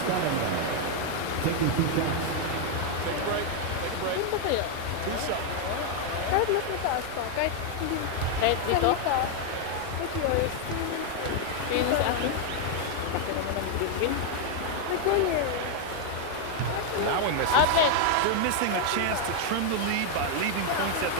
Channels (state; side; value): different; both; correlation 0.00